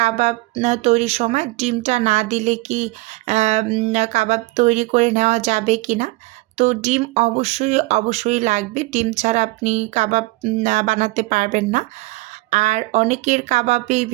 তৈরির সময় ডিমটা না দিলে কি কাবাব তৈরি করে নেওয়া যাবে কি না? তো ডিম অবশ্যই লাগবে। ডিম ছাড়া আপনি কাবাব বানাতে পারবেন না। আর অনেকের কাবাবেই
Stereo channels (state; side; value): quieter; left; 21.9 dB